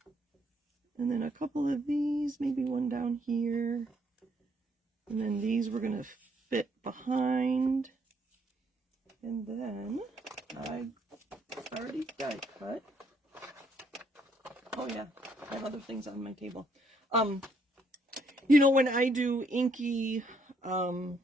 And then a couple of these, maybe one down here. And then these we're going to fit behind. And then I already die cut. Oh yeah, I have other things on my table. You know, when I do inky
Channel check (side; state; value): both; normal; correlation 0.70